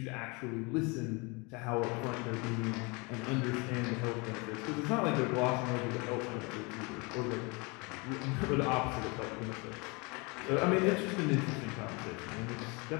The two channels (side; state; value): right; quieter; 28.7 dB